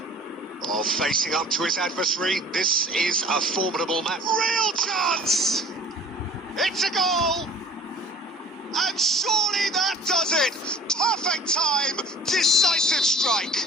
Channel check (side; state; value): both; normal; correlation 0.48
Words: Oh, facing up to his adversary. This is a formidable match. Real chance! It's a goal! And surely that does it! Perfect time! Decisive